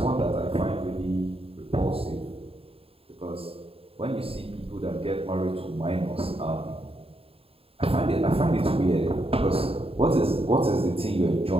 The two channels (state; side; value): late; left; 0.27 ms